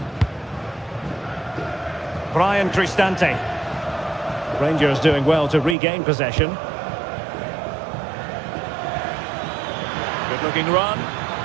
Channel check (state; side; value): drops out; left; at 5.8 s